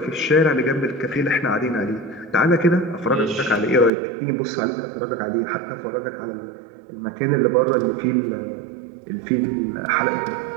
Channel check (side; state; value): left; drops out; at 3.9 s